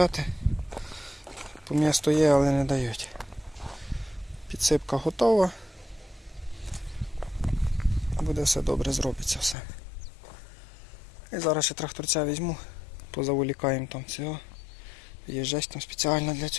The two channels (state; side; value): drops out; right; at 9.6 s